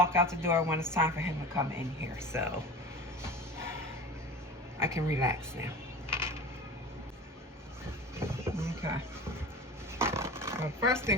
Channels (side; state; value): both; normal; correlation 0.35